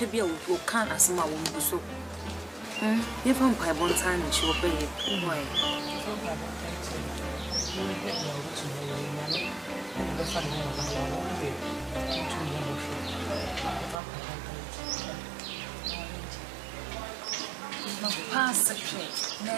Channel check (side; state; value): left; drops out; at 14.0 s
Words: be a who can't as my own so. If I'm by one time, she will pay it. Pass the train,